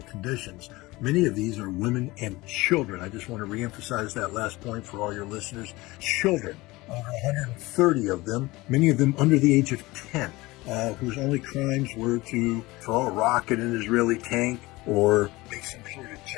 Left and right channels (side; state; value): right; quieter; 20.8 dB